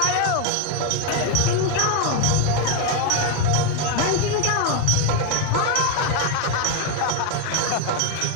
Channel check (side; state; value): both; different; correlation 0.01